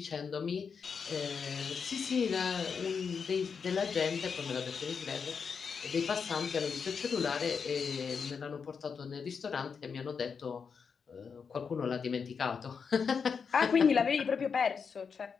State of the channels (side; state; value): right; quieter; 6.0 dB